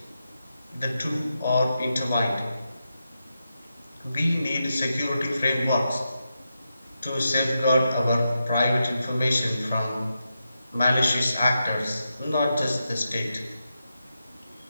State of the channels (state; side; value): inverted; both; correlation -0.87